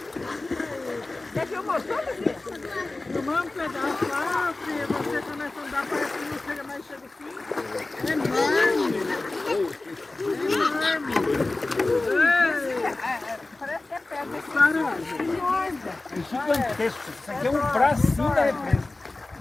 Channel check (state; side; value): quieter; right; 3.1 dB